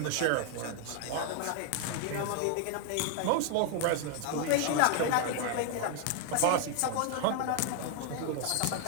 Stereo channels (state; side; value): different; both; correlation 0.01